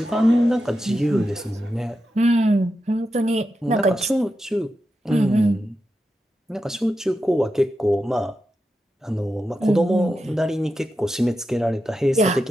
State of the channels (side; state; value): both; normal; correlation 0.89